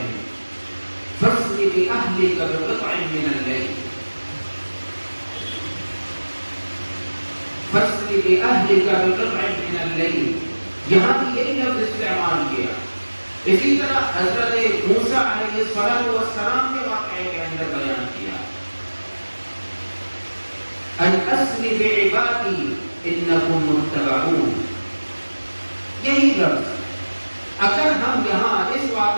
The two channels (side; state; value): both; inverted; correlation -1.00